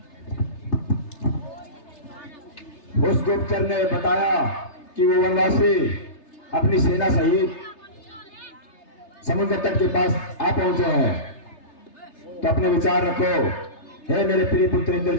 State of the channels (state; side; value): late; right; 3.3 ms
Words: उस गुप्तचर ने बताया कि वो वनवासी अपनी सेना सहित समुद्र तट के पास आ पहुंचे हैं। तो अपने विचार रखो। हे मेरे प्रिय पुत्र